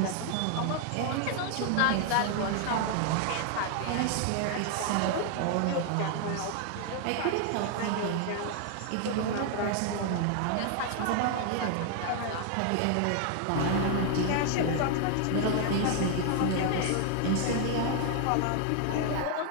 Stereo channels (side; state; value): both; different; correlation 0.00